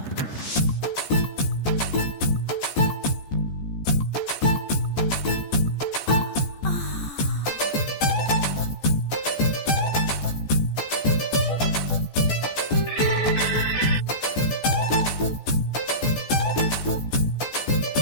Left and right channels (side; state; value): right; late; 14 ms